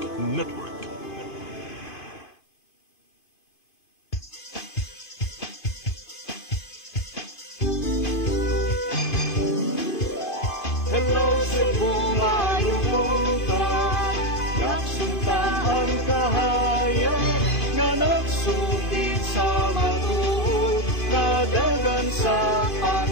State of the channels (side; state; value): right; late; 2.5 ms